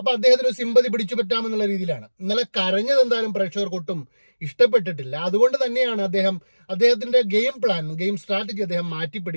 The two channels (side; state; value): both; inverted; correlation -1.00